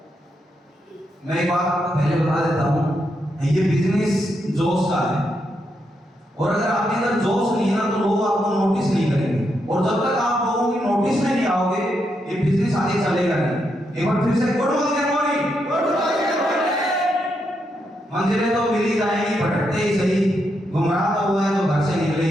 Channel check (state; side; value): normal; both; correlation 0.81